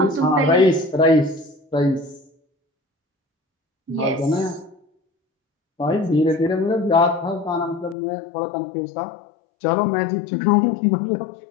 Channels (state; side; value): drops out; right; at 8.0 s